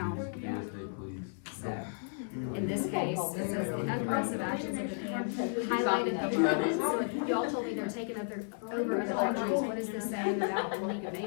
yeah. So, in this case, it says the aggressive actions of Japan highlighted the limits. So if y'all told me they're taking over other countries, what is this saying about the League of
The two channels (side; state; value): right; silent; 55 dB below the other